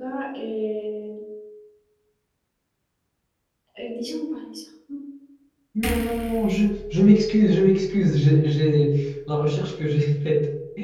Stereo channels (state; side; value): identical; both; correlation 1.00